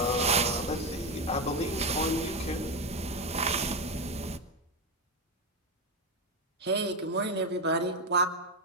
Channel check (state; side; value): normal; both; correlation 0.10